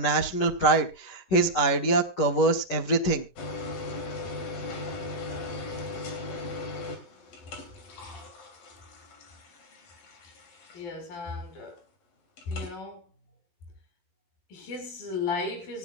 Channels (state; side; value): late; right; 11 ms